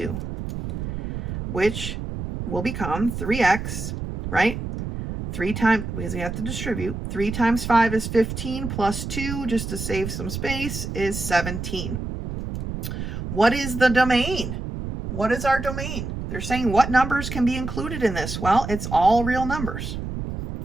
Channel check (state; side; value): noise; right; rumble, 6 dB below the sound